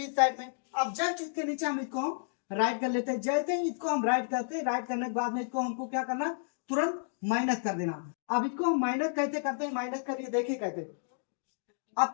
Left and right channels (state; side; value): silent; right; digital silence